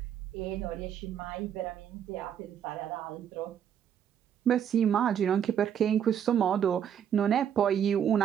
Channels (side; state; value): left; quieter; 9.0 dB